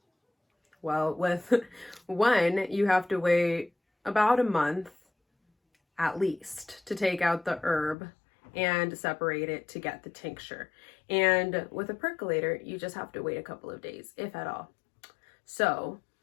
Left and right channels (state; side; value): drops out; right; at 8.0 s